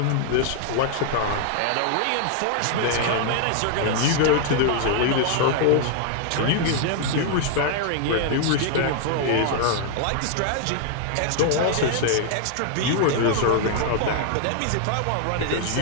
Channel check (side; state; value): both; different; correlation 0.00